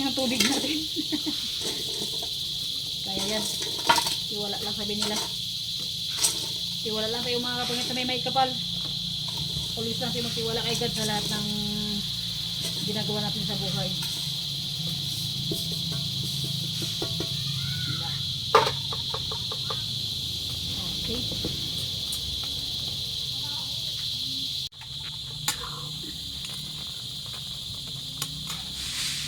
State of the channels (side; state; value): both; identical; correlation 1.00